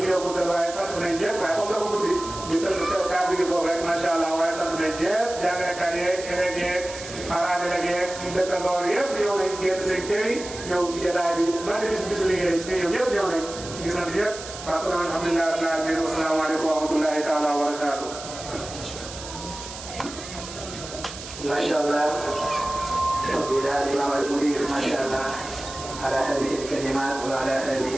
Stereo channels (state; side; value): noise; right; hiss, 12 dB below the sound